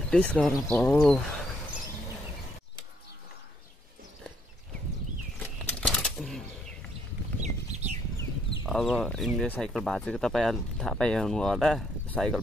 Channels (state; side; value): normal; both; correlation 0.70